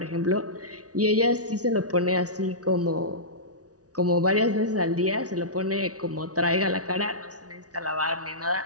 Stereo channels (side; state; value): left; late; 0.67 ms